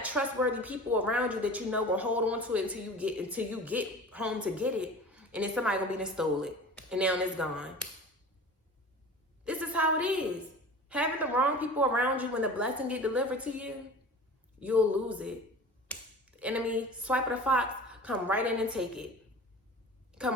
trustworthy people around you that you know will hold on to it until you get home to get it, and then somebody gonna be done stole it, and now it's gone. This is how it is. Having the wrong people around you when the blessing get delivered to you, you'll lose it. The enemy, swipe of the fox, come right in and take it.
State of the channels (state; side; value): normal; both; correlation 0.38